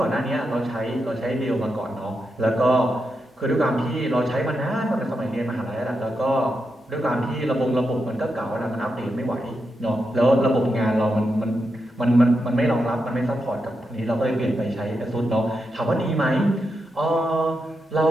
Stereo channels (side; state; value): both; normal; correlation 0.86